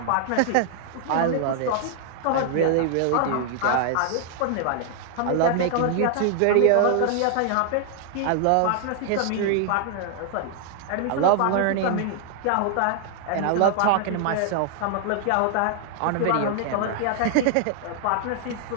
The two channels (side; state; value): both; different; correlation 0.00